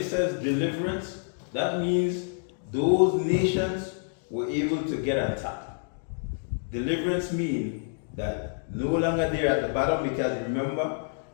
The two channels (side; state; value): right; silent; digital silence